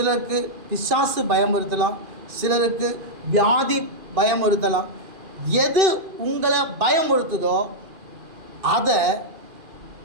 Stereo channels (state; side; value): late; left; 2.4 ms